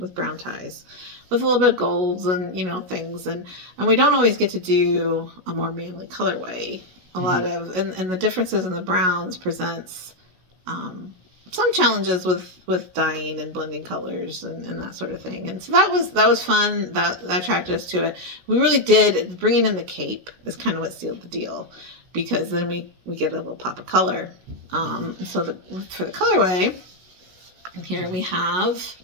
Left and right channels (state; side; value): late; left; 16 ms